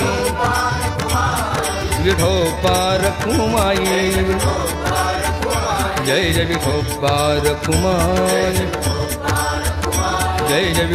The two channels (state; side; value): identical; both; correlation 1.00